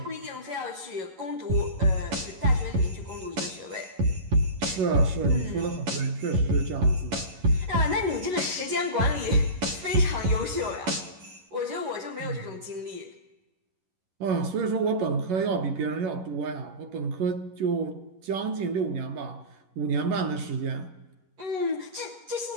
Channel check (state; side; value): late; left; 11 ms